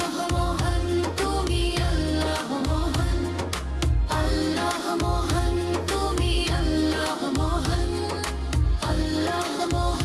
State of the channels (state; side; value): identical; both; correlation 1.00